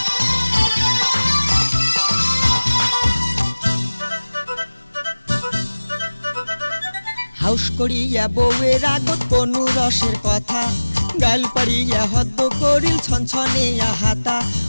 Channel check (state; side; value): inverted; both; correlation -1.00